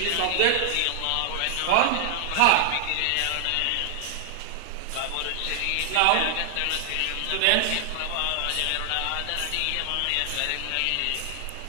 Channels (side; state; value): both; different; correlation -0.01